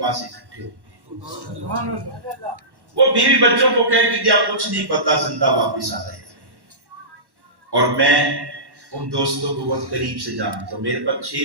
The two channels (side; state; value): left; late; 1.1 ms